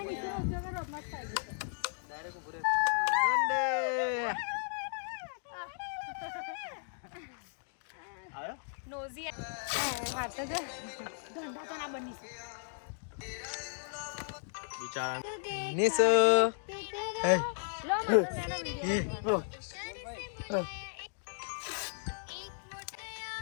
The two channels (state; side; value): silent; right; digital silence